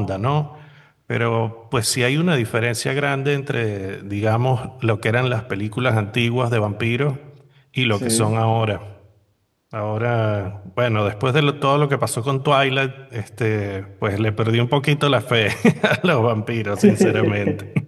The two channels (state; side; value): identical; both; correlation 1.00